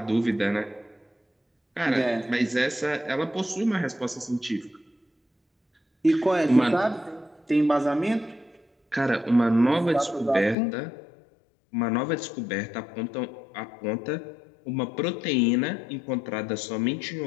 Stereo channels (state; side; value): drops out; right; at 10.6 s